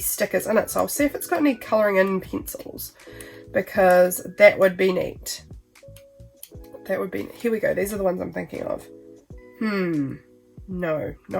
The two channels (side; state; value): both; identical; correlation 1.00